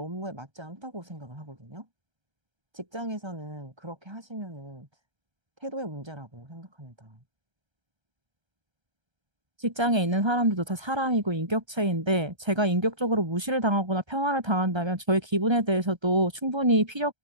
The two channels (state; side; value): late; left; 1.3 ms